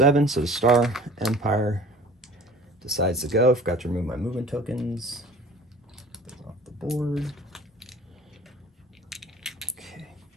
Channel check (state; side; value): normal; both; correlation 0.46